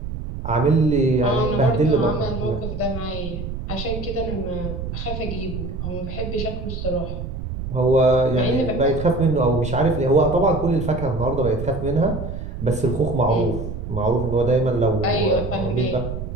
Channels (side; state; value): right; noise; rumble, 7 dB below the sound